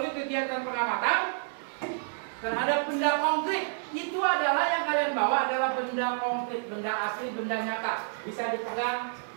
kegiatan pengamatan terhadap benda konkret. Itu adalah yang kalian bawa adalah benda konkret, benda asli, benda nyata. Bisa dipegang,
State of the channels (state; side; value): silent; left; digital silence